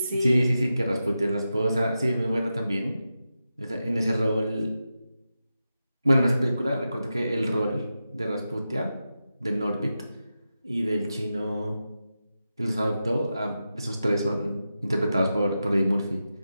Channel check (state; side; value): inverted; both; correlation -0.90